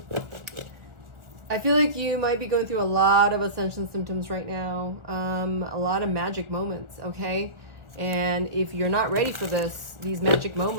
feel like you might be going through a lot of ascension symptoms right now. A lot of magic moments, okay? And if you're not ready for this, these magic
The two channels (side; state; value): left; late; 1.4 ms